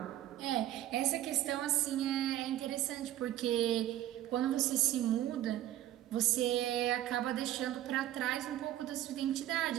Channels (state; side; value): quieter; left; 13.2 dB